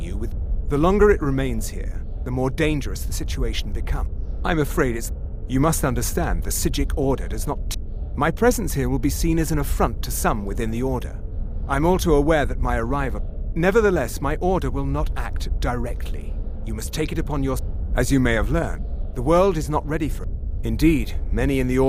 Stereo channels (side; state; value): both; identical; correlation 1.00